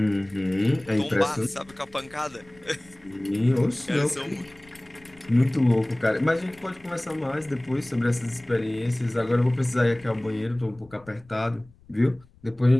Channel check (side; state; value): left; noise; rumble, 26 dB below the sound